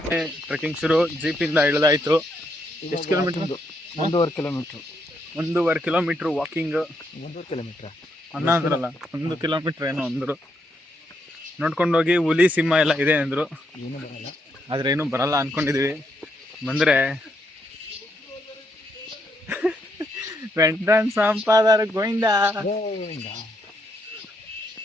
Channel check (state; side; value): normal; both; correlation 0.77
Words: ಟ್ರೆಕ್ಕಿಂಗ್ ಶುರು. ಜೀಪಿಂದ ಇಳಿದಾಯ್ತು. ಎಷ್ಟು kilometre? 1.5 kilometre. 1.5 kilometre walking. 1.5 kilometre ಅನ್ನ ಅಂದ್ರಲ್ಲ, 1 ಕಿಲೋಮೀಟರ್ ಏನೋ ಅಂದರು. ನೋಡ್ಕೊಂಡೋಗಿ ಹುಲಿ ಸಿಂಹ ಎಲ್ಲ ಇದೆ ಅಂದರು. ಏನೂ ಬರಲ್ಲ, ಆದ್ರೆ ಏನೂ ಬರಲ್ಲ ಅನ್ಕೊಂಡಿದೀವಿ. ಬಂದ್ರೆ ವೆಂಟನ್ ಸಂಪಾದರ ಗೋವಿಂದ.